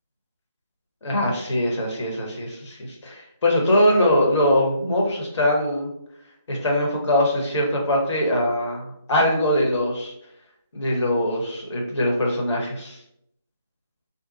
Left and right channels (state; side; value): inverted; both; correlation -0.66